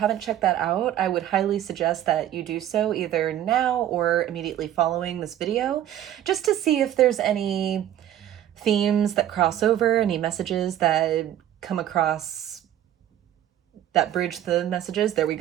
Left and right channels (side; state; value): left; quieter; 11.8 dB